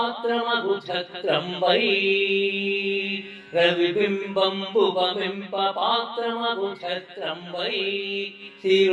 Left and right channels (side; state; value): both; identical; correlation 1.00